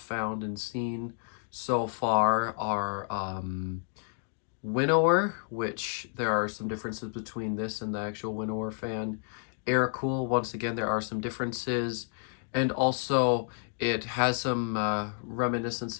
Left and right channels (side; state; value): right; silent; 55 dB below the other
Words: and seen so far are Winnower, which there are some differences between this and the actual Winnower fan. Air Cool, once again, there are some differences. And also, it has some